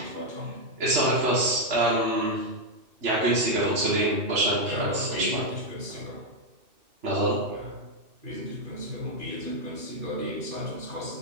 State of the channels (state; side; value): late; left; 2.6 ms